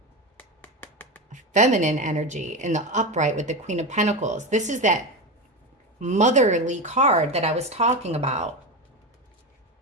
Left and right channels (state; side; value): normal; both; correlation 0.19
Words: feminine energy in the upright with the Queen of Pentacles. This is that motherly card that I was talking about.